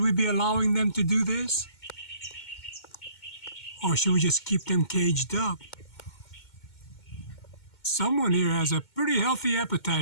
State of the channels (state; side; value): late; right; 2.2 ms